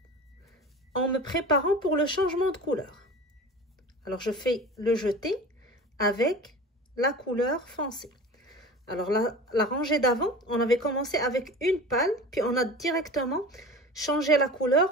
en me préparant pour le changement de couleur. Alors je fais le jeté avec la couleur foncée. Alors la rangée d'avant, on avait commencé avec une pâle, puis on a directement changé la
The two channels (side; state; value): both; normal; correlation 0.36